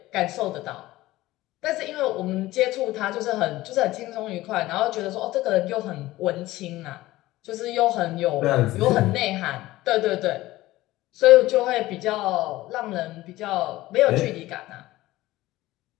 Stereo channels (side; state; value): right; quieter; 17.2 dB